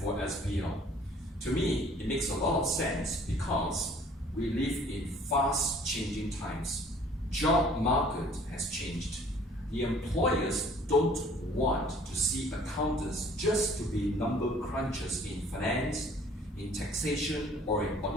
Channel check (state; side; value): normal; both; correlation 0.54